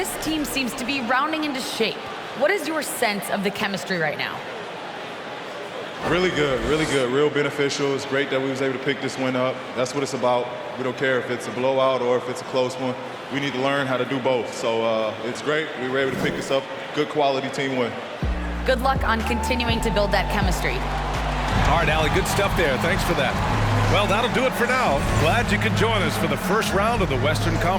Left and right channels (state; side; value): identical; both; correlation 1.00